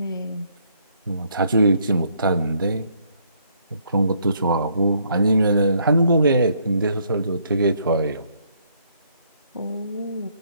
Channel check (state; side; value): inverted; both; correlation -0.69